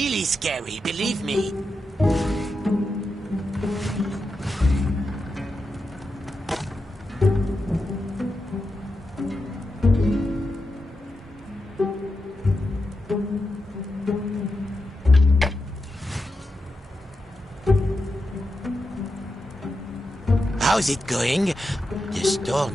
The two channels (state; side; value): normal; both; correlation 0.89